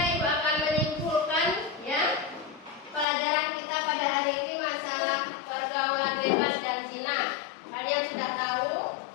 Ibu akan menyimpulkan ya pelajaran kita pada hari ini masalah pergaulan bebas dan zina. Kalian sudah tahu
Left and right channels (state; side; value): drops out; right; at 3.1 s